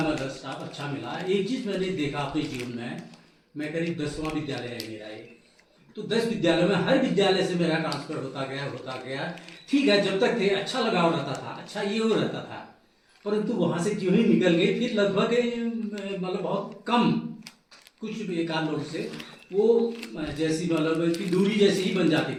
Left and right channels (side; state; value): both; identical; correlation 1.00